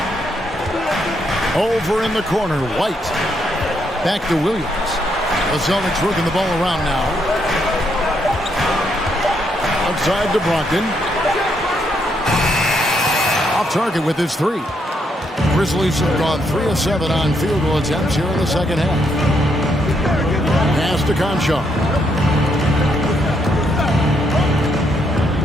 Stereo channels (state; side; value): normal; both; correlation 0.76